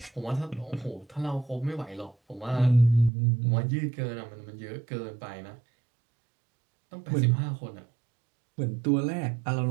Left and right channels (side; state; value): left; drops out; at 3.1 s